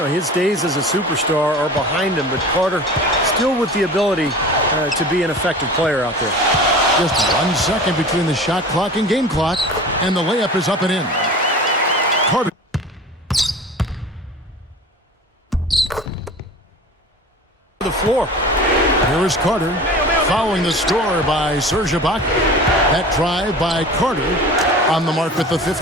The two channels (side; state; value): both; normal; correlation 0.38